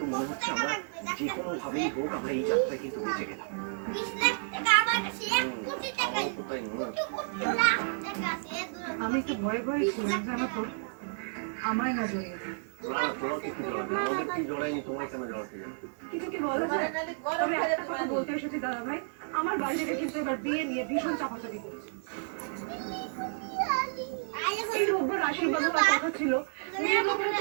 মনে হচ্ছে আমরা যে কোনো ভাবেই হোক আমরা এই যাত্রায় কিন্তু বেঁচে গেলাম। আমি একটু ভয়ে ভয়ে ছিলাম, জানো তো, আমায় না জড়িয়ে দিই। না, তোমাকে কি জড়াবে? আমাদের কি জড়ায়নি, তোমায় কেন জড়াতে যাবে? কিছু কি বলা যায়? তবে একটা কথা বলতে এসেছি দাদা ভাই, আমার বাড়ি থেকে কিন্তু এবার বিয়ে নিয়ে ভীষণ চাপাচাপি করছে। এই রোববার আশীর্বাদ হওয়ার কথা ছিল, মেয়ের ব্যাপারে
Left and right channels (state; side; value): silent; left; digital silence